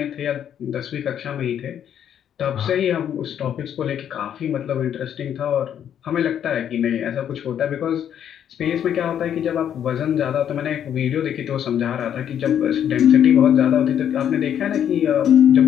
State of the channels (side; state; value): right; quieter; 9.5 dB